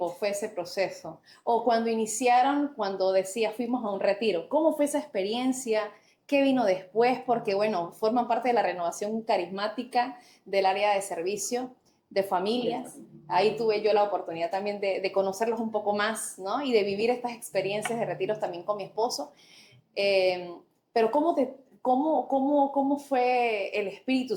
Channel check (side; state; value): both; identical; correlation 1.00